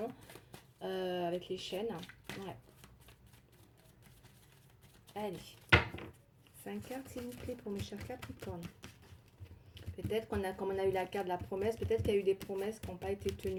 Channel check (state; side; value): identical; both; correlation 1.00